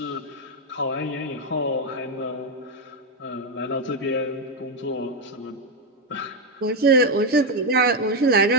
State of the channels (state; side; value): normal; both; correlation 0.06